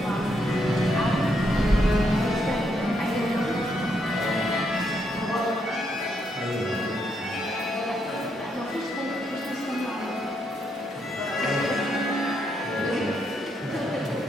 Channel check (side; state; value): both; normal; correlation 0.77